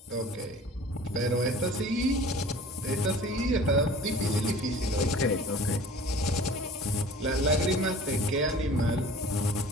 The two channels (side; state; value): both; normal; correlation 0.45